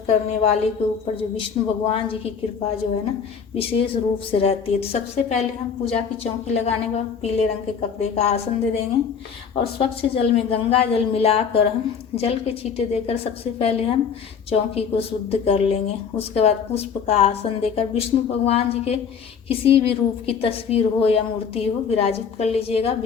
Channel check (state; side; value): quieter; right; 6.6 dB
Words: करने वाले के ऊपर जो विष्णु भगवान जी की कृपा जो है ना विशेष रूप से रहती है। तो सबसे पहले हम पूजा की चौकी लगाने के बाद पीले रंग के कपड़े का आसन दे देंगे और स्वच्छ जल में गंगा जल मिलाकर हम जल के छींटे देकर सबसे पहले हम चौकी को शुद्ध कर लेंगे। उसके बाद पुष्प का आसन देकर विष्णु भगवान जी के किसी भी रूप की तस्वीर हो या मूर्ति हो विराजित कर लीजिएगा।